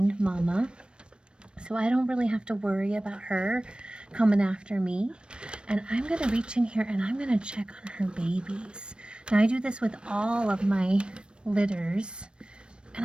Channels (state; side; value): late; left; 0.055 ms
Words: mama. So I don't really have to worry about her coming after me. And I'm gonna reach in here and I'm gonna check on her babies. Now I do this with all of my litters.